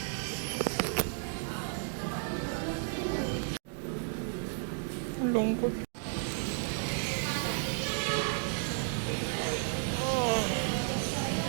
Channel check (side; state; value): left; silent; 56 dB below the other